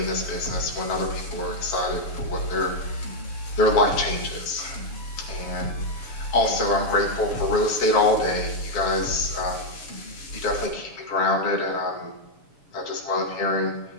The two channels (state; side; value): late; right; 7.0 ms